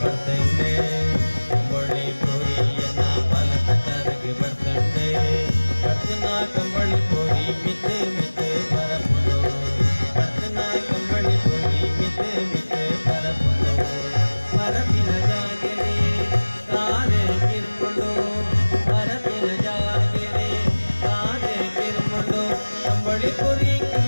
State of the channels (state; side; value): inverted; both; correlation -1.00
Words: ಬರ್ತಂಡೆ ಅಂಬೊಳ್ಳಿ ಪುರಿಯನ್ನ ಬಲತಕರಿಗೆ ಬರ್ತಂಡೆ ಕರ್ತನ ಕಂಬಳಿ ಪುರಿ ಮಿತ್ತೆ ಮಿತ್ತೆ ಬರಪುಡು ಕರ್ತನ ಕಂಬಳಿ ಪುರಿ ಮಿತ್ತೆ ಮಿತ್ತೆ ಬರಪುಡು ಮರಪಿನ ಜಾಗೆರೆ ಕಾರೆ ಕಿರ್ಕೊಂಡು ಮರಪಿನ ಜಾಗೆರೆ ಕಾರೆ ಕಿರ್ಕೊಂಡು ಕಂಬಳಿ ಪುರಿ